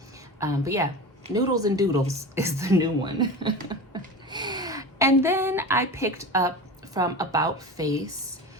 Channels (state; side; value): normal; both; correlation 0.29